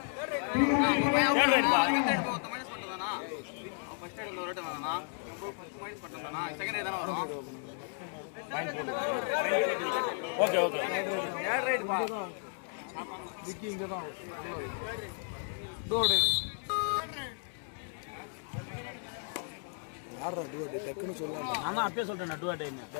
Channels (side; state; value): right; silent; 55 dB below the other